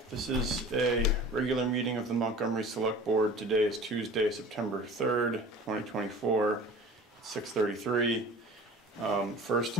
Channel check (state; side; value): normal; both; correlation 0.41